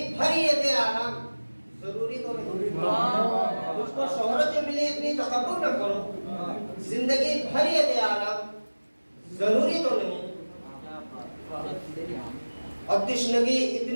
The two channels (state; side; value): inverted; both; correlation -1.00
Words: भर ये दे आराम, जरूरी तो नहीं। तुझको शोहरत जो मिली इतनी तकब्बुर न करो, जिंदगी भर ये दे आराम, जरूरी तो नहीं। और तिश्नगी